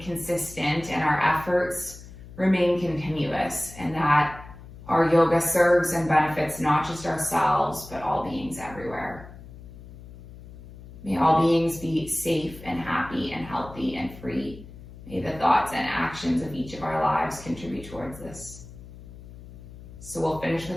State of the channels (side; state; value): left; noise; hum, 17 dB below the sound